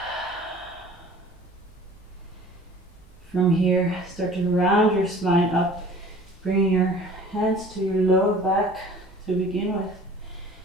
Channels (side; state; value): both; normal; correlation 0.47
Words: From here, start to round your spine up, bringing your hands to your lower back to begin with.